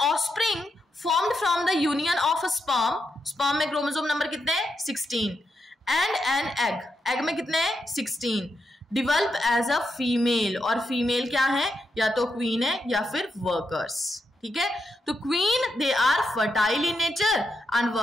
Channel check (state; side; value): normal; both; correlation 0.83